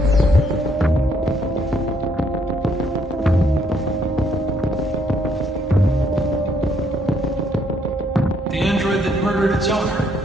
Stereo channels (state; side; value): normal; both; correlation 0.70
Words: The android that murdered its owner.